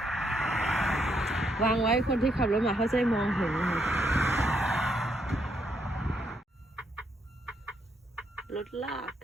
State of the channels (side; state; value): both; normal; correlation 0.76